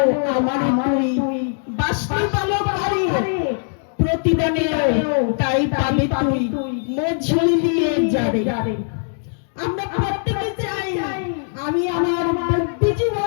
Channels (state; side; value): silent; right; digital silence